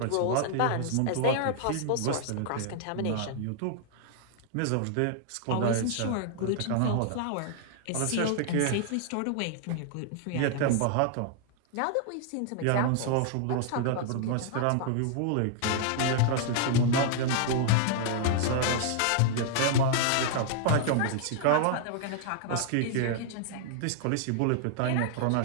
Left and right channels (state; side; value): different; both; correlation 0.00